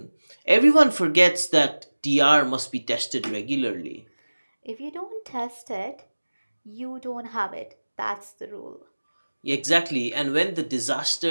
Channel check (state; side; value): inverted; both; correlation -1.00